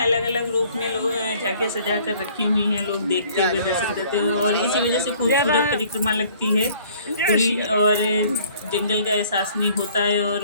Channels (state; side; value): inverted; both; correlation -0.56